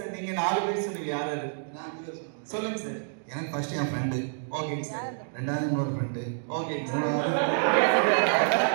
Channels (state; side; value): silent; left; digital silence